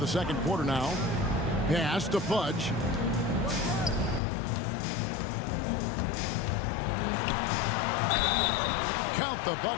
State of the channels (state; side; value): drops out; right; at 4.2 s